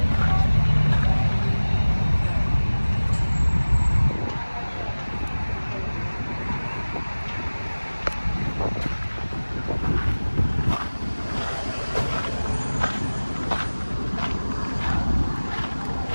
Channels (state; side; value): inverted; both; correlation -1.00